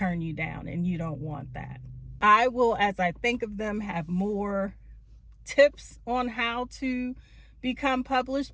you down, and you don't want that. I will, as I think of them, have more tips on how to become published,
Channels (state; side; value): identical; both; correlation 1.00